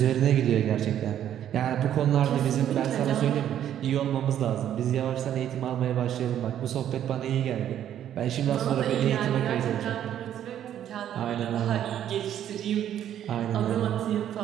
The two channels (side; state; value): left; quieter; 10.6 dB